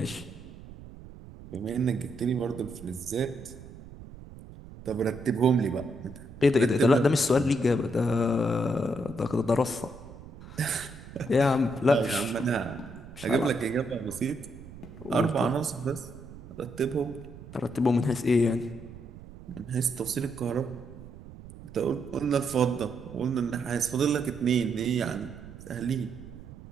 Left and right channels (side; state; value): right; noise; rumble, 16 dB below the sound